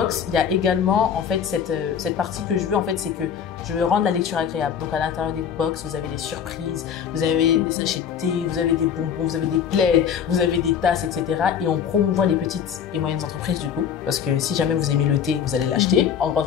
il y a également en fait cette partie que je veux en fait, c'est que je veux rendre la lecture agréable. Donc à l'intérieur des box, vous avez des surprises, vous avez des sachets de thé, vous avez des bonbons, vous avez des plaids, vous avez des tasses, etc. Et on promouvoit les petites et moyennes entreprises du coup, parce que si jamais vous aimez le thé, vous allez l'acheter en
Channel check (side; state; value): right; quieter; 8.1 dB